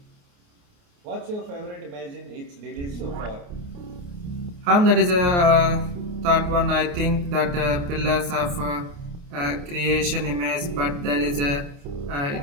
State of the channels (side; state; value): left; late; 29 ms